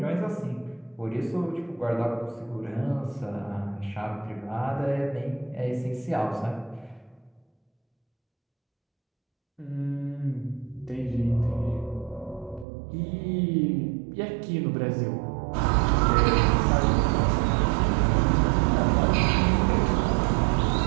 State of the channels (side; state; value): left; drops out; at 12.7 s